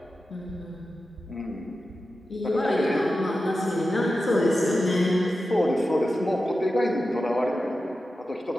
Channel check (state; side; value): normal; both; correlation 0.92